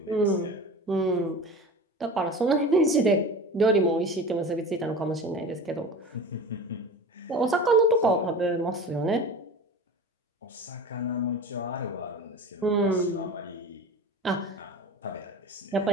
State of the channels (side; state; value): both; normal; correlation 0.34